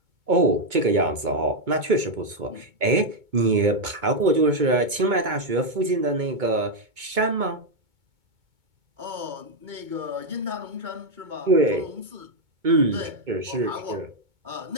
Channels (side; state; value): left; late; 2.2 ms